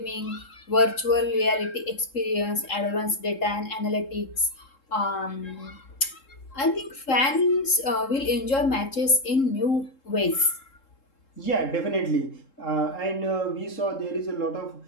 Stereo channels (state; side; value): late; right; 3.7 ms